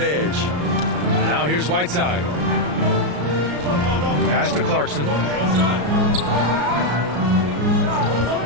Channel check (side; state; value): left; late; 34 ms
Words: edge. Now here's Whiteside. Pass to Clarkson.